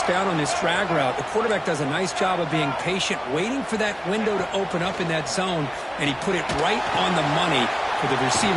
down on this drag route. The quarterback does a nice job of being patient, waiting for that window to open up in that zone, and he put it right on the money for the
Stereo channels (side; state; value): both; identical; correlation 1.00